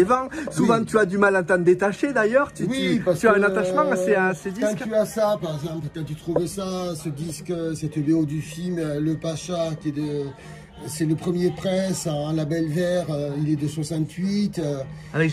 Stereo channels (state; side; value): identical; both; correlation 1.00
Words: vends. Souvent tu as du mal à t'en détacher d'ailleurs, tu as un attachement à ces disques. Quand tu as ça, par exemple, quand tu trouvais ça, ce disque, cette BO du film, Le Pacha, qui est c'est le premier presse en label vert, il est de 68. Avec